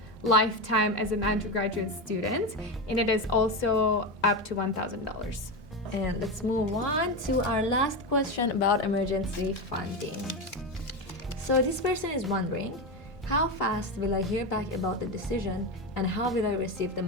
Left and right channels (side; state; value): both; normal; correlation 0.16